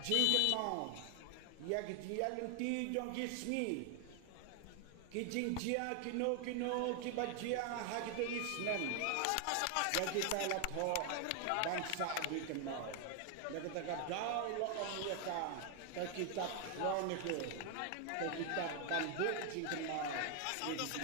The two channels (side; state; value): both; different; correlation 0.00